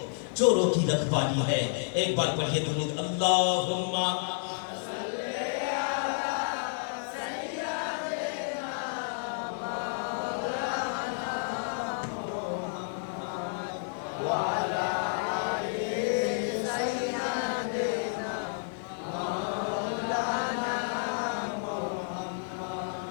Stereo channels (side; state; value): right; silent; 57 dB below the other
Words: چوروں کی رکھوالی ہے۔ ایک بار پڑھیے درود، اللہم